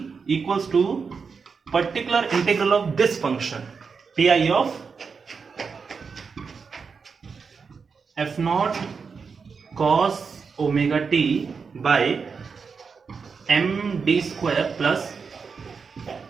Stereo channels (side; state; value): left; quieter; 5.4 dB